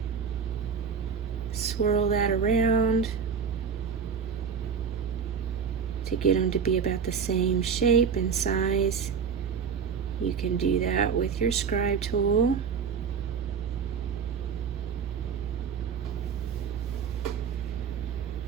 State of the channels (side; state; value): left; quieter; 6.3 dB